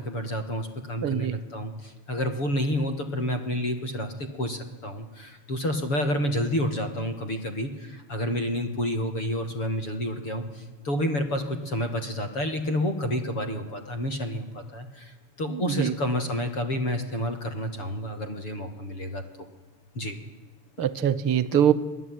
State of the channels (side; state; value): right; late; 7.0 ms